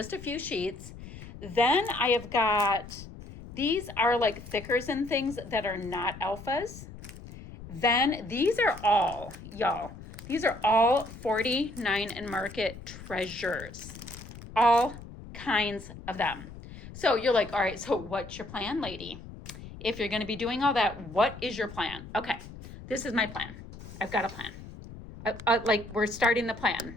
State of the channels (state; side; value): noise; left; rumble, 14 dB below the sound